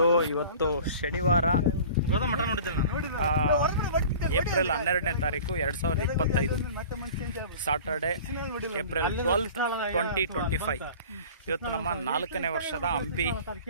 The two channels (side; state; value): both; inverted; correlation -0.42